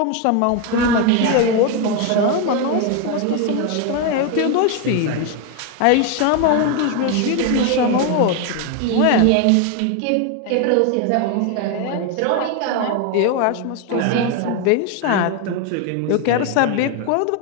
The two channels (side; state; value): both; different; correlation 0.01